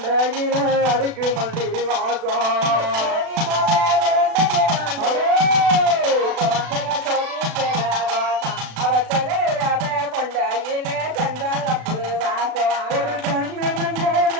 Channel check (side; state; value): left; late; 36 ms